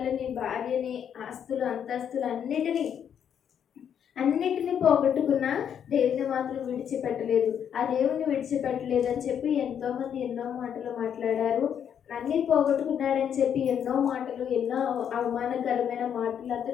భార్యని, ఆస్తులు, అంతస్తులు అన్నిటినీ పోగొట్టుకున్నా దేవుని మాత్రం విడిచిపెట్టలేదు. ఆ దేవుని విడిచిపెట్టలేదు అని చెప్పి ఎంతోమంది ఎన్నో మాటలు మాట్లాడారు. అన్నీ పోగొట్టుకున్నాడని చెప్పి ఎన్నో మాటలు, ఎన్నో అవమానకరమైన మాటలు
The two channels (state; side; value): quieter; right; 8.6 dB